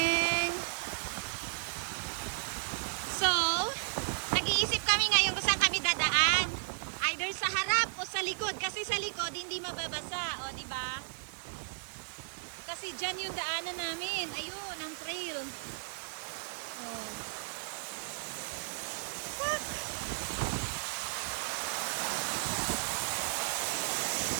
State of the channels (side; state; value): left; silent; digital silence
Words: So, nag-iisip kami ngayon kung saan kami dadaan. Either sa harap o sa likod. Kasi sa likod, hindi mababasa. O, diba? Kasi dyan yung daanan namin. Ayun, ang